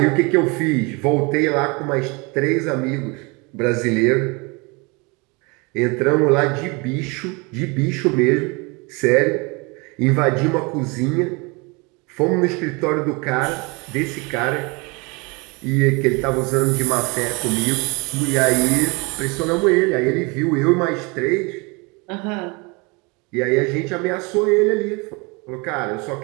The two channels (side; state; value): left; quieter; 28.4 dB